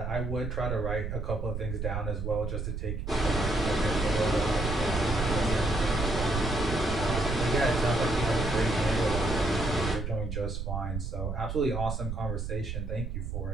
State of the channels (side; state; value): right; noise; rumble, 4 dB below the sound